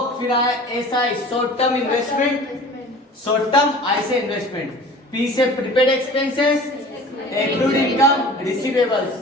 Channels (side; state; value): both; normal; correlation 0.43